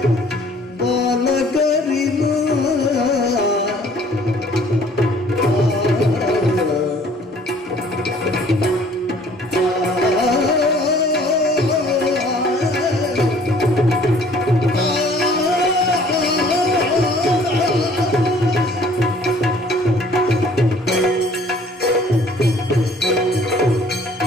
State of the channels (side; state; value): both; normal; correlation 0.56